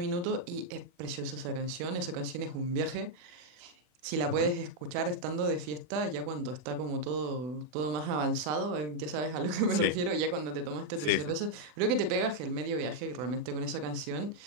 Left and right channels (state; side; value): late; left; 40 ms